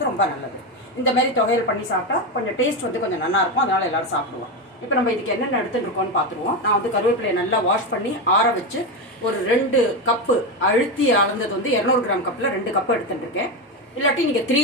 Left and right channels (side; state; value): both; normal; correlation 0.13